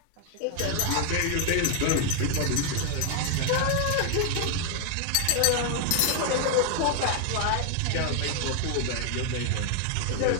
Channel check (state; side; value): different; both; correlation 0.00